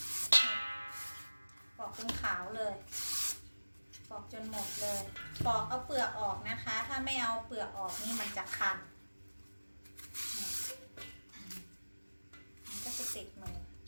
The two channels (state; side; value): inverted; both; correlation -1.00